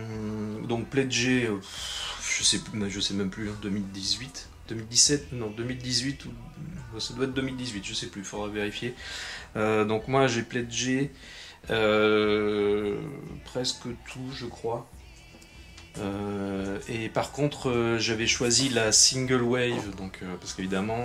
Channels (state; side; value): identical; both; correlation 1.00